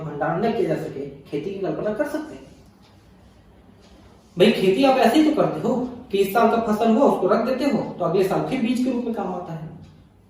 भंडारण न किया जा सके, खेती की कल्पना कर सकते हैं? भाई खेती आप ऐसे ही तो करते हो कि इस साल का फसल हुआ उसको रख देते हो तो अगले साल फिर बीज के रूप में काम आता है।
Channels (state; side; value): identical; both; correlation 1.00